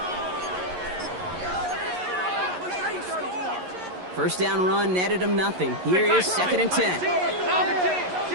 First down run netted him nothing. Here is 2nd and 10.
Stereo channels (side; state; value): left; late; 11 ms